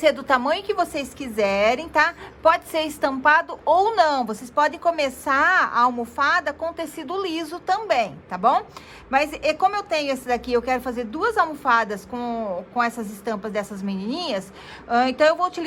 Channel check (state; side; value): identical; both; correlation 1.00